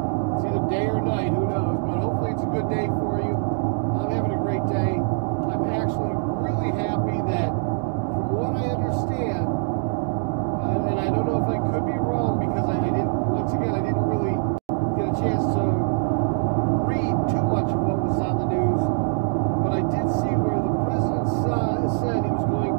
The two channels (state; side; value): silent; left; digital silence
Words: either day or night, who knows, but hopefully it's a good day for you. I'm having a great day. I'm actually really happy that, from what I understand, and I don't know if I could be wrong because I didn't really get a chance to read too much of what was on the news, but I did see where the president said he was going